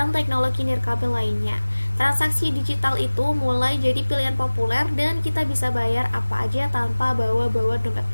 teknologi nirkabel lainnya. Transaksi digital itu mulai jadi pilihan populer dan kita bisa bayar apa aja tanpa bawa-bawa dompet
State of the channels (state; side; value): inverted; both; correlation -1.00